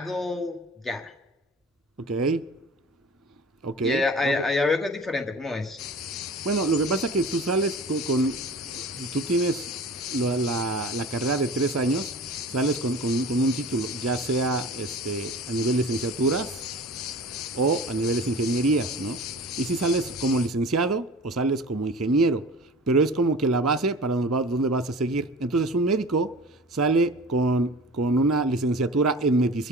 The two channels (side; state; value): both; normal; correlation 0.39